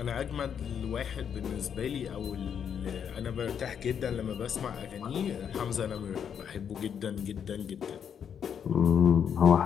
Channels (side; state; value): right; quieter; 7.9 dB